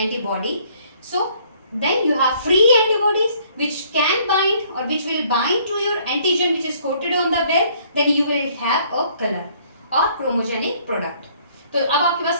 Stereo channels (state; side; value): inverted; both; correlation -0.61